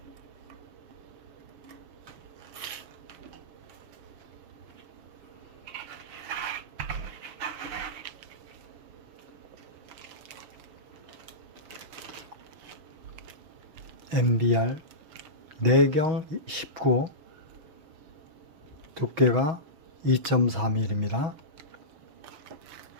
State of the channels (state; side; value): late; left; 6.3 ms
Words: MBR 내경 19 두께가 2.4mm입니다.